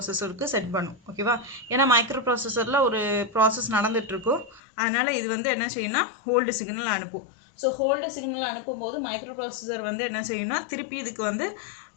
செட் பண்ணும். ஓகேவா, ஏன்னா மைக்ரோ ப்ராசஸரில் ஒரு ப்ராசஸ் நடந்துகிட்ருக்கும். அதனால் இது வந்து என்ன செய்யணும்னா ஹோல்டு சிக்னல் அனுப்பும். ஸோ ஹோல்டு சிக்னல் அனுப்பும்போது மைக்ரோ ப்ராசஸர் வந்து என்ன செய்யணும்னா திருப்பி இதுக்கு வந்து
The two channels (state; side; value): drops out; right; at 4.6 s